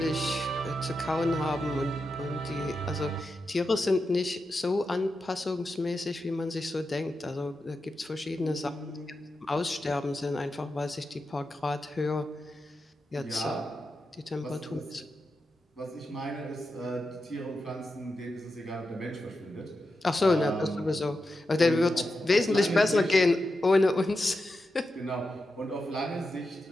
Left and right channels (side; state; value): both; normal; correlation 0.89